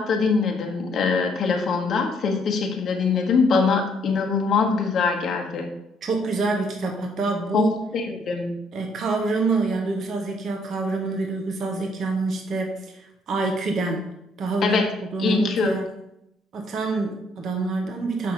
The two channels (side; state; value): both; normal; correlation 0.67